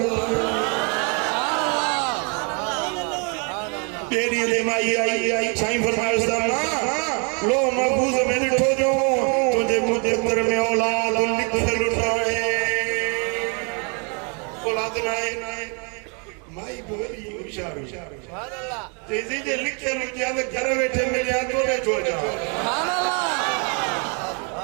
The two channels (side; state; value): left; quieter; 36.3 dB